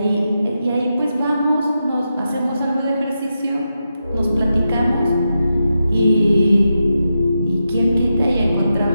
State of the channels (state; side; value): inverted; both; correlation -0.87